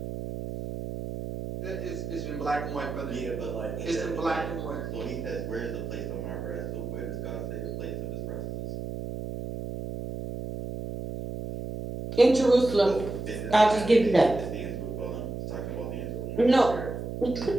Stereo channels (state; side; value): noise; right; hum, 6 dB below the sound